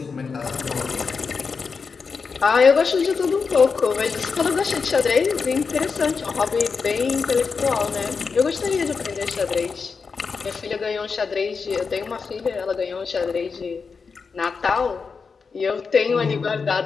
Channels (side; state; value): right; quieter; 5.2 dB